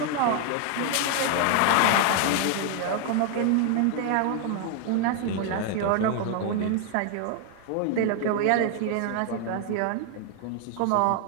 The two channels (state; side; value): different; both; correlation 0.00